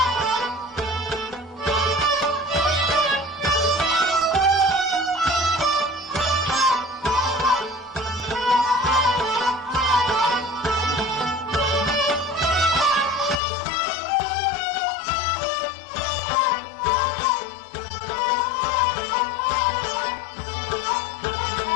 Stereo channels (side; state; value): right; drops out; at 13.4 s